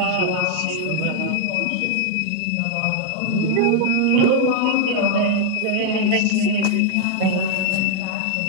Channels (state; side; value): different; both; correlation 0.00